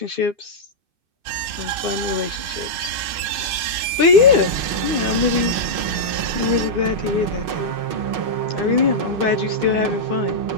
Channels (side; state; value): left; late; 2.6 ms